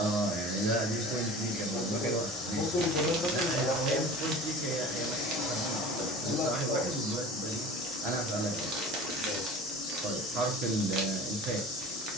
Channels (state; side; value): normal; both; correlation 0.39